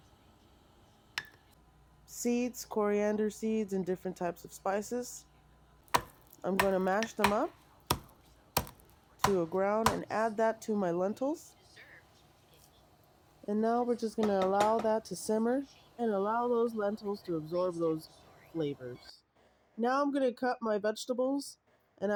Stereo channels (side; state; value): both; identical; correlation 1.00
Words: seeds, coriander seeds, and different types of spices. I'm going to mash them up to a ground and add that to my lentils. And now we're just going to allow that to simmer and allow those lentils to absorb those flavors. Now I'm going to cut my vegetables, and